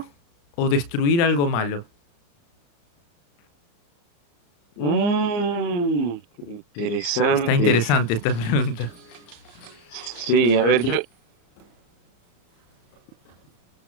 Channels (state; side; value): late; right; 35 ms